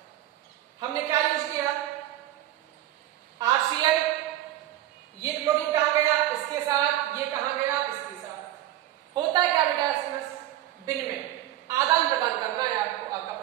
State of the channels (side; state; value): left; quieter; 13.9 dB